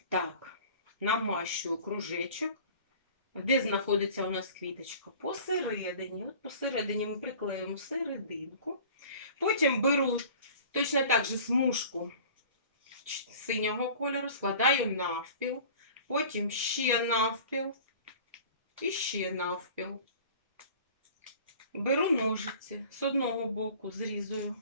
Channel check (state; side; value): inverted; both; correlation -0.44